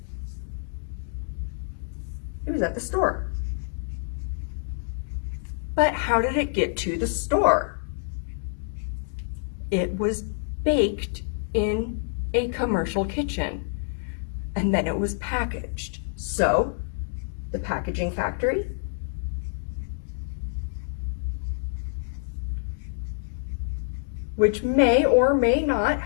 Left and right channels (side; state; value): right; silent; digital silence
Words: it was at the store. But how did it get to the store? It was baked in a commercial kitchen, and then it was packaged. So, the packaging factory, which may or may not